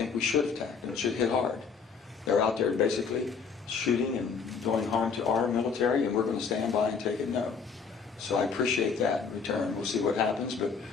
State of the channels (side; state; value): right; quieter; 5.7 dB